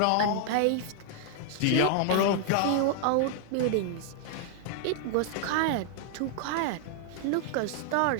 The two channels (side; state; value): both; different; correlation 0.00